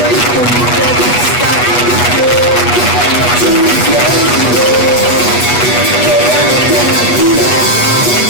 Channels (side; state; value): right; late; 8.2 ms